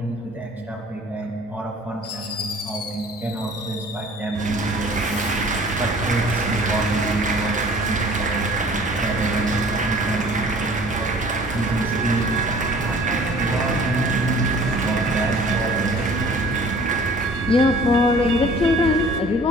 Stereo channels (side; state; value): both; normal; correlation 0.50